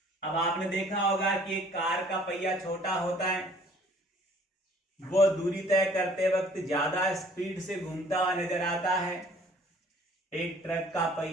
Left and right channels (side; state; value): both; normal; correlation 0.56